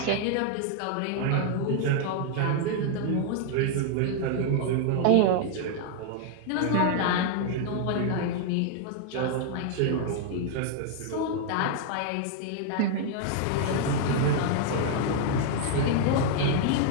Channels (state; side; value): different; both; correlation 0.00